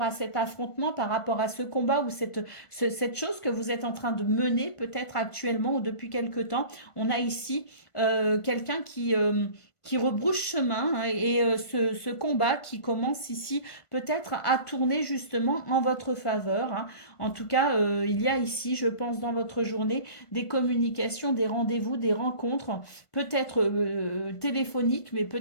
à cet affrontement, par rapport à ce combat ou cette chose que vous êtes en train de mener peut-être actuellement ou depuis quelque temps. On a ici quelqu'un qui rebrousse chemin, hein, et ce combat qui commence ici peut-être à tourner justement en votre faveur, hein. En tout cas, il y a ici, je pense, dans votre journée, des communications, des rendez-vous, des rencontres, peut-être téléphoniques, mais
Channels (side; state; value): right; late; 1.5 ms